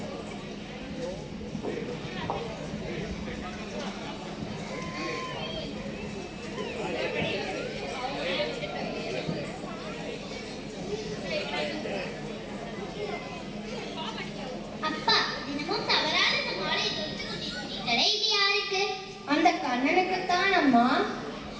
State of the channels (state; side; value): identical; both; correlation 1.00